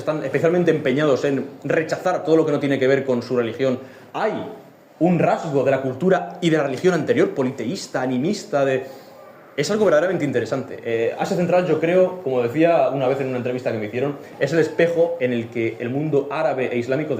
especialmente empeñados en rechazar todo lo que no tiene que ver con su religión, hay un rasgo de la cultura y de la religión anterior, politeísta, animista, es algo verdaderamente interesante. Asia Central, yo creo, como decía una vez en una entrevista que me hicieron, es el espejo en el que el mundo árabe e islámico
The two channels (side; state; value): both; identical; correlation 1.00